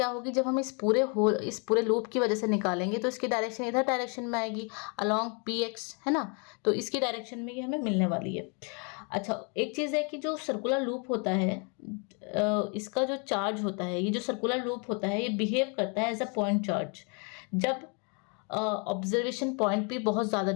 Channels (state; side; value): quieter; right; 35.8 dB